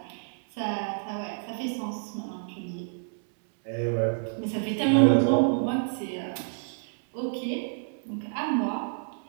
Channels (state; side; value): silent; left; digital silence